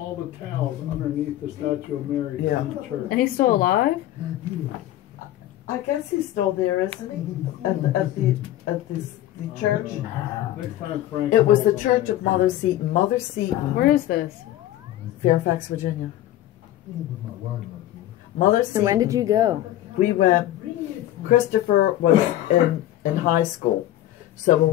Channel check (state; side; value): quieter; right; 13.6 dB